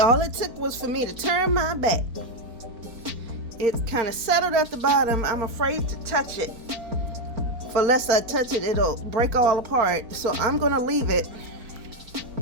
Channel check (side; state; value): left; late; 4.4 ms